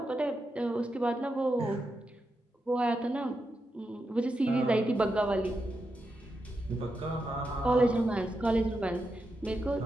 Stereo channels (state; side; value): normal; both; correlation 0.86